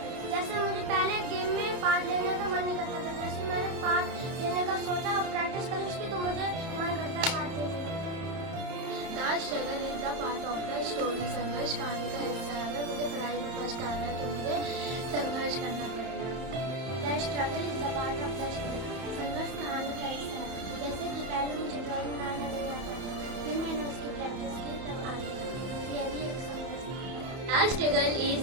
जैसे मुझे पहले गेम में पार्ट लेने का मन नहीं करता था। जैसे मैंने पार्ट लेने का सोचा और प्रैक्टिस करी उसकी तो मुझे मन करता है पार्ट लेने का। The struggle is the part of the story. संघर्ष कहानी का हिस्सा है। अगर मुझे पढ़ाई में फर्स्ट आना है तो मुझे संघर्ष करना पड़ेगा। The struggle is the part of the story. संघर्ष कहानी का हिस्सा है। जैसे कि पहले मुझे ड्राइंग बनाना नहीं आता था, फिर मैंने उसकी प्रैक्टिस की तब आ गया। यह भी एक संघर्ष था। The struggle is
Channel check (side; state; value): left; late; 31 ms